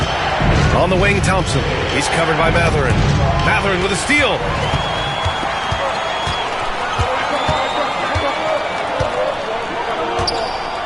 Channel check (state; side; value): identical; both; correlation 1.00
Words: On the wing, Thompson. He's covered by Mathurin. Mathurin with a steal.